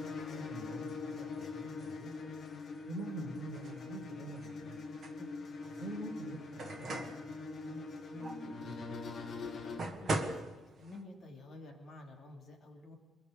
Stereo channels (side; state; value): both; normal; correlation 0.72